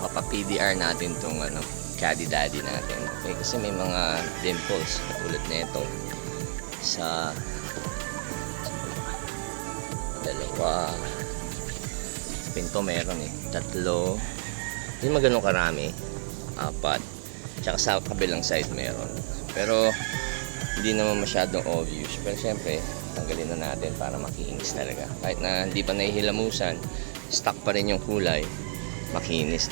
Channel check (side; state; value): left; silent; 58 dB below the other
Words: natin tong Caddy Daddy natin. Okay, kasi may mga dimples katulad nito sa dalawa. Sa pinto meron tatlo. Hindi magano karami. Apat. Tsaka sa kabilang side meron. Pero hindi naman masyadong obvious. Pero syempre, tanggalin na natin para makinis talaga. Kahit na hindi pa nahihilamusan, stuck pa rin yung kulay, makinis,